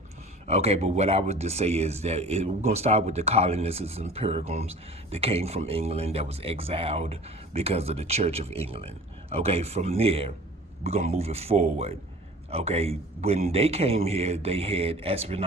Okay, but what I would just say is that we're gonna start with the colonists and Pilgrims that came from England, that was exiled because of the Church of England. Okay, from there we're gonna move it forward. Okay, when they came here, they had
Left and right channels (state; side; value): normal; both; correlation 0.44